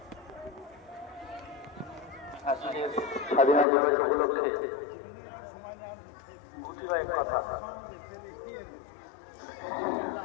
আজকে স্বাধীনতা দিবস উপলক্ষে কথা,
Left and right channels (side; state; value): right; drops out; at 3.7 s